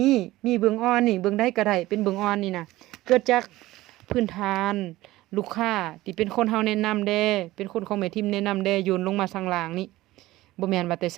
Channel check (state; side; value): quieter; left; 17.2 dB